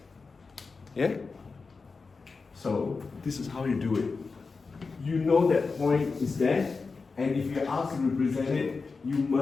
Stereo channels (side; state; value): right; quieter; 4.4 dB